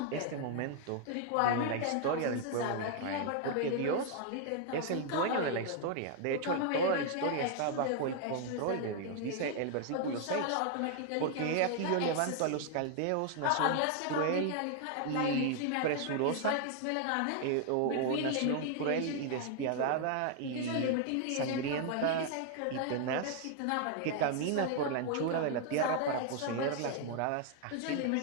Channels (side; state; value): both; different; correlation 0.00